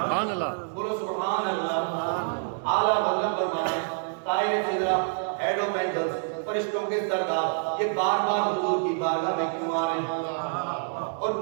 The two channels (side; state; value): left; silent; digital silence